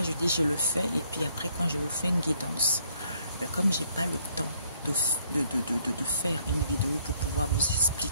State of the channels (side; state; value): both; inverted; correlation -0.67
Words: je dis je le fais, et puis après, quand je vous fais une guidance, comme j'ai pas le temps de faire une vidéo pour pouvoir vous